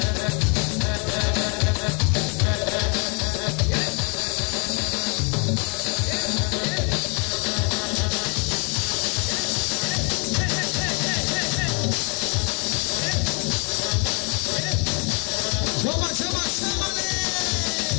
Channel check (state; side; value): quieter; right; 34.7 dB